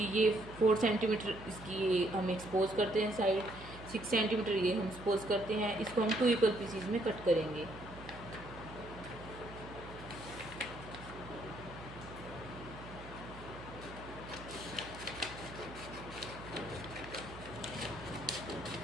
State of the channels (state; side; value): noise; right; hum, 15 dB below the sound